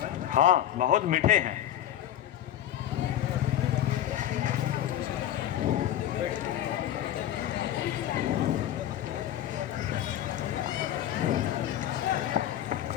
हाँ, बहुत मीठे हैं।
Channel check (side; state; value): right; quieter; 11.7 dB